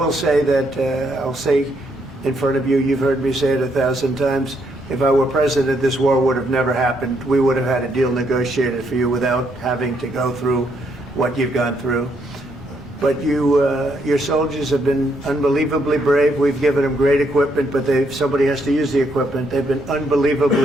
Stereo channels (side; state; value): both; normal; correlation 0.74